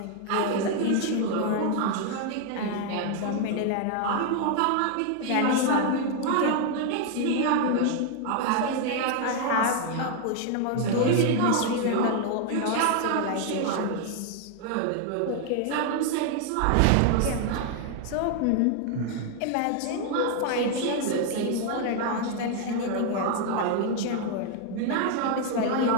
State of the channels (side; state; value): both; different; correlation 0.00